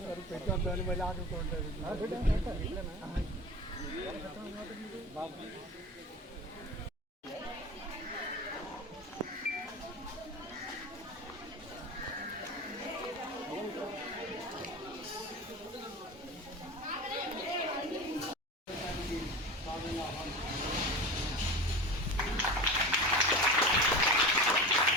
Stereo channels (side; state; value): both; normal; correlation 0.30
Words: పెట్టొద్దని మళ్ళీ ఆడుకుంటారు.